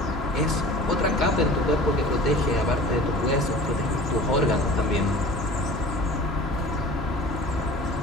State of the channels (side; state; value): both; normal; correlation 0.42